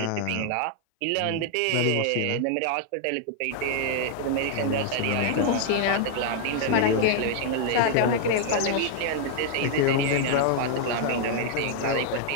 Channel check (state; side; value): different; both; correlation -0.01